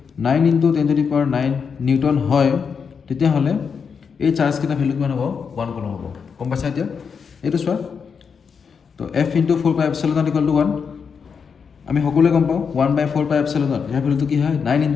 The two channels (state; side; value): quieter; right; 6.2 dB